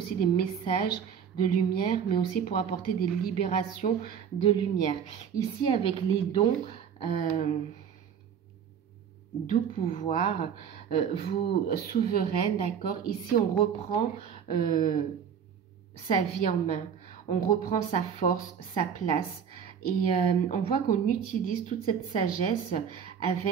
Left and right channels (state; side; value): quieter; left; 7.7 dB